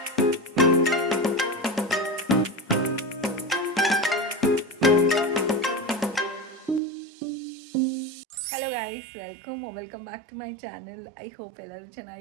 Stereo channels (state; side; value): drops out; left; at 6.8 s